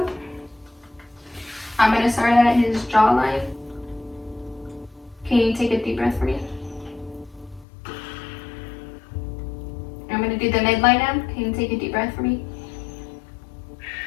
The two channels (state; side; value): drops out; right; at 7.7 s